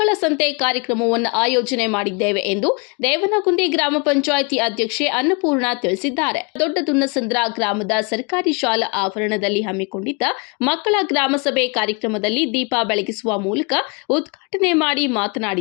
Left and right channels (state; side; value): quieter; right; 31.1 dB